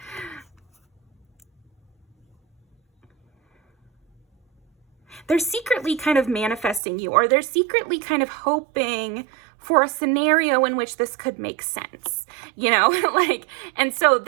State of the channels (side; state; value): left; drops out; at 6.8 s